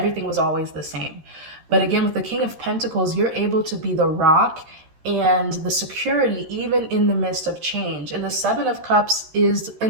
was always the same. But again, with the King of Pentacles, you're able to be the rock and the security even in the midst of change. And the Seven of Cups is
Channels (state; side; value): late; left; 13 ms